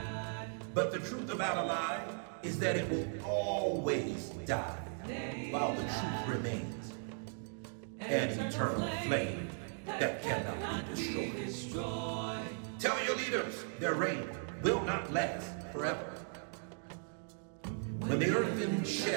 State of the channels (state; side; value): silent; left; 53 dB below the other